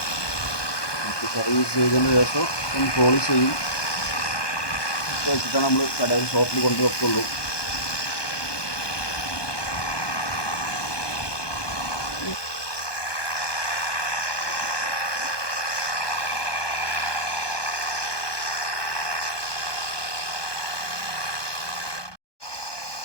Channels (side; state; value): right; late; 1.2 ms